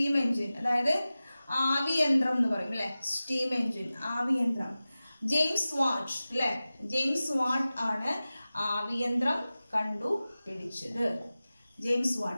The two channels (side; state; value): both; inverted; correlation -0.96